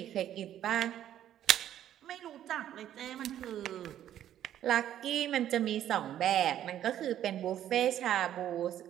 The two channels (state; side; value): quieter; left; 11.3 dB